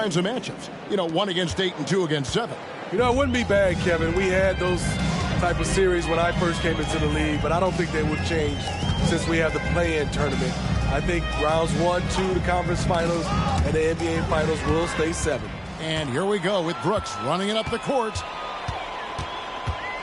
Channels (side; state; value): both; identical; correlation 1.00